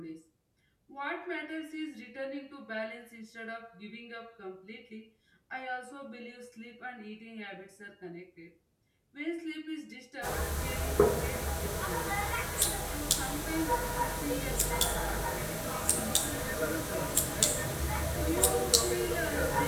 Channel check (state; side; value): identical; both; correlation 1.00